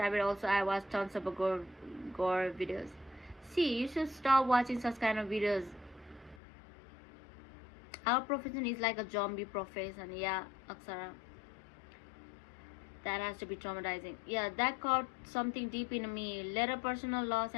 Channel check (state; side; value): drops out; right; at 6.4 s